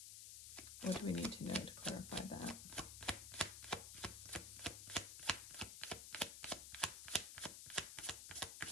What do we need to know to clarify that?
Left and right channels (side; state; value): left; noise; hiss, 8 dB below the sound